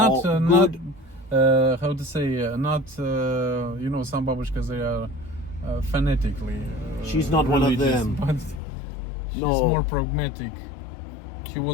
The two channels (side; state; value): right; drops out; at 8.6 s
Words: good. How to say? Not you know, some babushkas, they are phonetically. She's not one of them. But she's more pragmatic. She